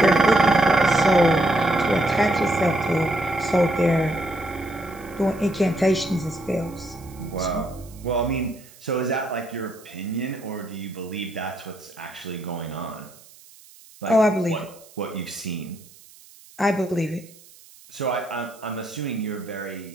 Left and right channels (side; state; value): right; noise; hiss, 24 dB below the sound